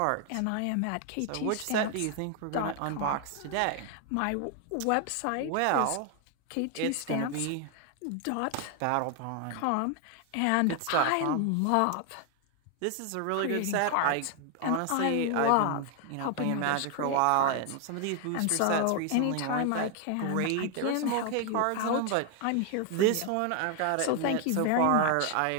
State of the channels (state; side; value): different; both; correlation 0.00